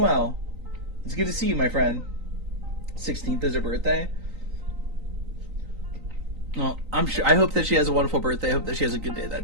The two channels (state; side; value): late; left; 3.9 ms